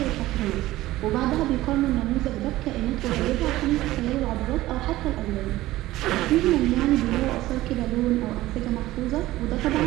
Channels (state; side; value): quieter; left; 16.5 dB